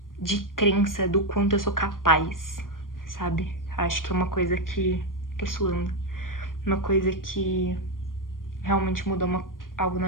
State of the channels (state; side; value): late; right; 0.90 ms